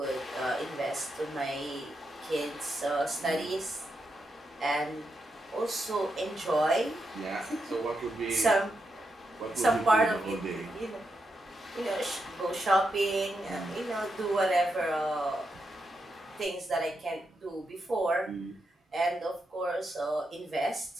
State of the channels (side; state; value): both; normal; correlation 0.84